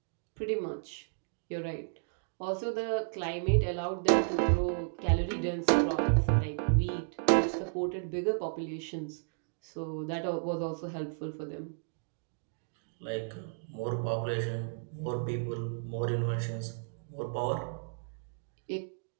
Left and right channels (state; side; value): silent; left; digital silence